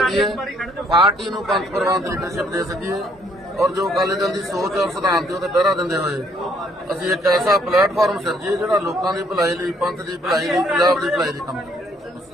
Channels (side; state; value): both; normal; correlation 0.66